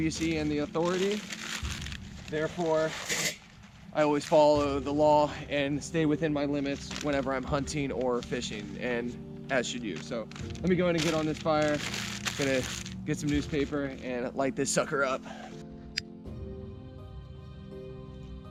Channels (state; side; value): identical; both; correlation 1.00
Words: and the authority. Therefore, I always follow the law and stay within my limits whenever I'm hunting or fishing, and as should you. So let me go ahead and get on this fire. Gonna get some newspaper and light this sucker up.